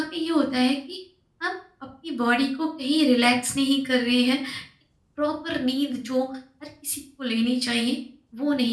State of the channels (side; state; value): both; identical; correlation 1.00